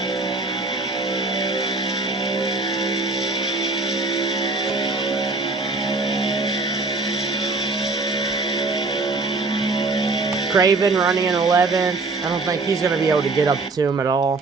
Craven running in 11th. I don't think he's going to be able to get up to him at all.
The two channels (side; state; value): left; quieter; 3.6 dB